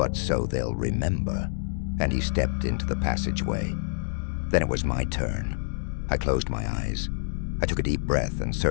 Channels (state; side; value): silent; right; digital silence